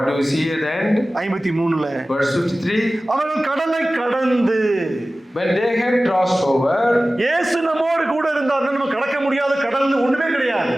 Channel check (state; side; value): normal; both; correlation 0.97